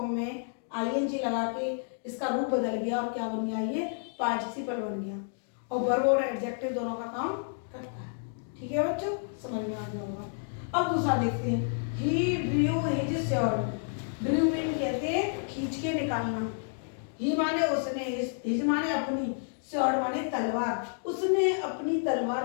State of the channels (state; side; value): silent; right; digital silence